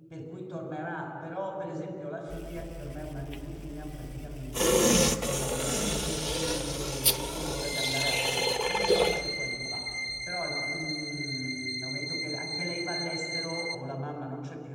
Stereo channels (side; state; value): both; identical; correlation 1.00